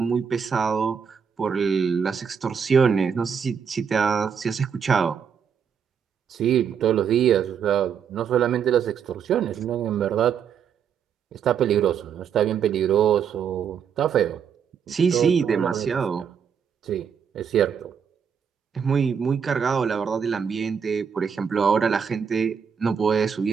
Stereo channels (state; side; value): quieter; left; 7.2 dB